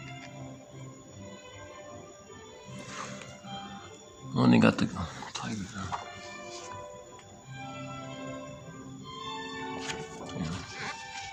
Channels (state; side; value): identical; both; correlation 1.00